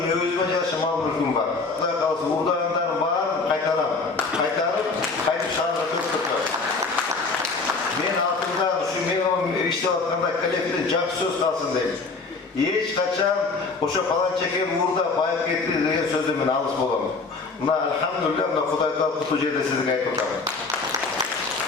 özüme jarasha mal mülküm var. Kuday kalsa uğurdayanların bарын kaytarım. Kaytıp şahırda köpürtür. Men altında şu men işlep atkanda kolektivde jakşı söz kalsın deyim. Hiç kaçan oşo falan çeken uğurda bayıp ketти деген сөздөн мен алыс болом. Мына алхамдулилlah мына Кудай таап кутуу жерде сизге айтып атам.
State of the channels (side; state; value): right; quieter; 4.1 dB